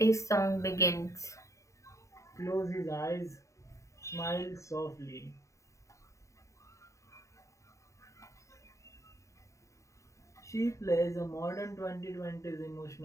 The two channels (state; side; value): late; right; 0.15 ms